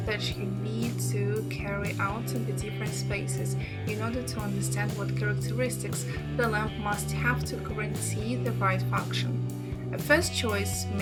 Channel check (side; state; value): both; identical; correlation 1.00